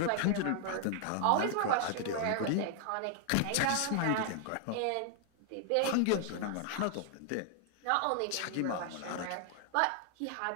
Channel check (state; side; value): different; both; correlation 0.00